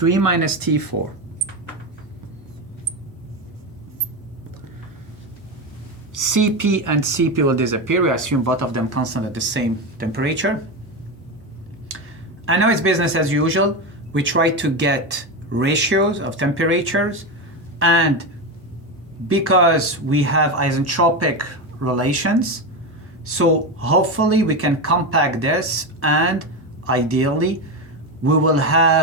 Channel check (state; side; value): normal; both; correlation 0.16